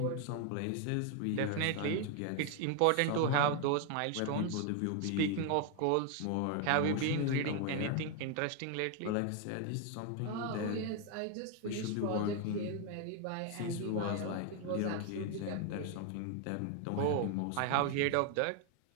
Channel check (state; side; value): different; both; correlation 0.01